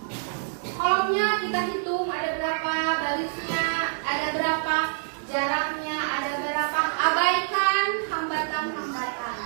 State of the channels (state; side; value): silent; left; digital silence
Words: Kolomnya kita hitung ada berapa, barisnya ada berapa, jaraknya ada berapa. Abaikan hambatan-hambatan.